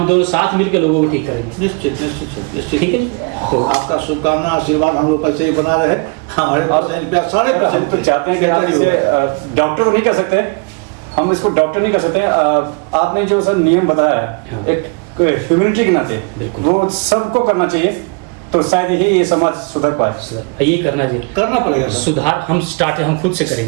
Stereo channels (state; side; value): quieter; left; 31.2 dB